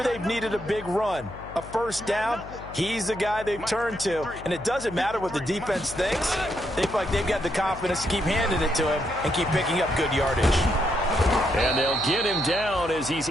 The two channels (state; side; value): noise; left; hum, 15 dB below the sound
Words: they've needed a big run, a 1st down, he's the guy they've turned to. And it doesn't matter what the defense thinks. They feel like they've got the confidence to keep handing it to him and keep picking up good yardage. And they'll get him down as he's